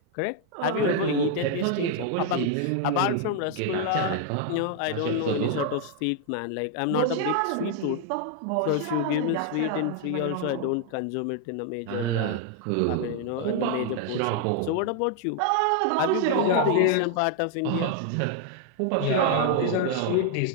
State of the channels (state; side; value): different; both; correlation 0.00